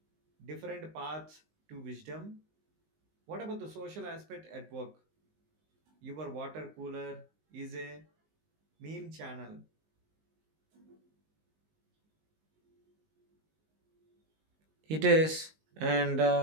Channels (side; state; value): left; late; 19 ms